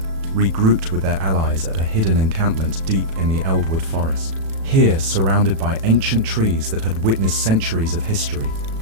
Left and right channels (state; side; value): late; left; 36 ms